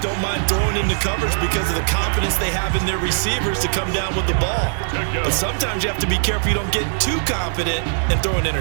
don't mind throwing into coverage because of the confidence they have in their receivers to come down with the ball. But sometimes you have to be careful you don't get too confident and throw an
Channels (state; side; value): silent; left; digital silence